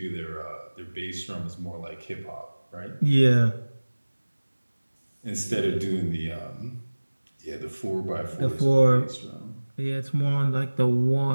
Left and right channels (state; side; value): inverted; both; correlation -1.00